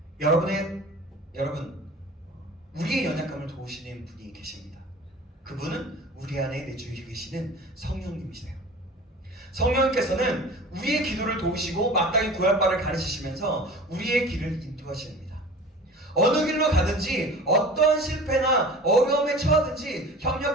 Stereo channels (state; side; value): normal; both; correlation 0.40